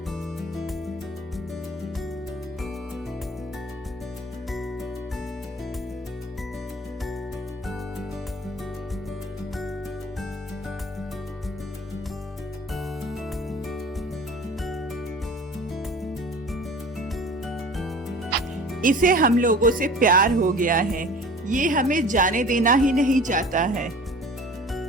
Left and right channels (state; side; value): normal; both; correlation 0.43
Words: इसे हम लोगों से प्यार हो गया है। ये हमें जाने देना ही नहीं चाहता है।